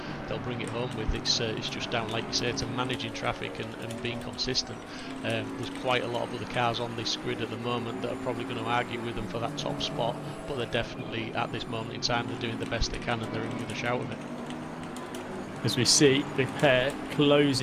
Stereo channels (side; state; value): both; identical; correlation 1.00